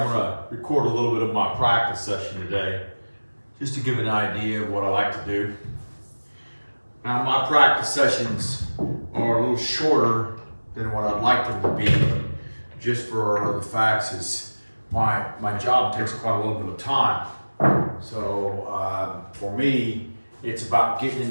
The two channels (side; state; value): both; inverted; correlation -1.00